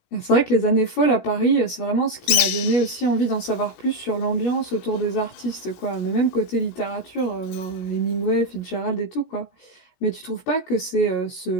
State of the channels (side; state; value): right; late; 17 ms